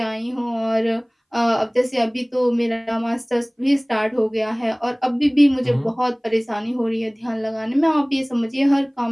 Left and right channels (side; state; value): both; identical; correlation 1.00